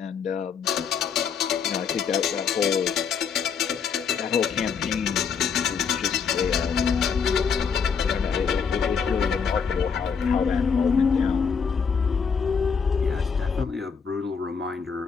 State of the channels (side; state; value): right; quieter; 6.3 dB